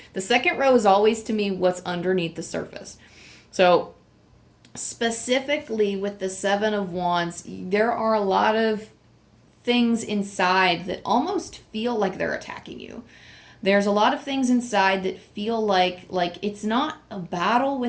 The second row is always to me what's underneath the surface. So specifically with the Seven of Wands, there are a lot of things inside that almost feel like they're attacking you. There's a lot of things inside that feel like it's not a battle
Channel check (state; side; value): identical; both; correlation 1.00